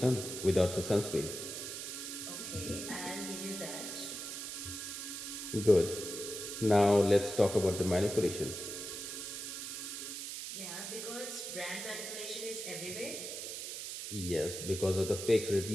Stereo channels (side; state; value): right; noise; hiss, 6 dB below the sound